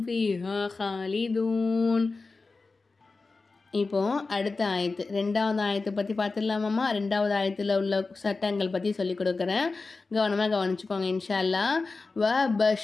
فيها خالدون. இப்போ அடுத்த ஆயத்து, ரெண்டாவது ஆயத்தை பற்றி பார்த்துடலாமாம்மா. ரெண்டாவது ஆயத்தில் உள்ள சட்டங்கள் பற்றி சொல்லிக் கொடுக்குறேன், கவனமாக கவனிச்சுக்கோங்க இன்ஷா அல்லாஹ். வ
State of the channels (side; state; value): right; quieter; 3.9 dB